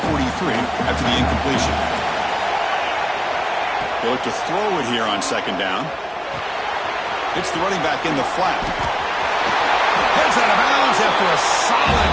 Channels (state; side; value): identical; both; correlation 1.00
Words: 43 after the incompletion. They look to throw it here on second down. It's the running back in the flat. Heads out of bounds after a solid